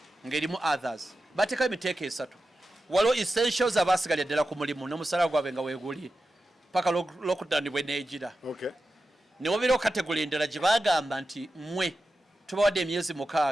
ng'erimu others bateekawo emiteeko esatu waliwo essentials abasigalya ddala ku mulimu n'omusala gwabwe nga weeguli paka lockdown bwe neegira ne wabeerawo kategole endala gye bagamba nti mmwe tubawadde emyezi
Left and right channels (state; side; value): normal; both; correlation 0.92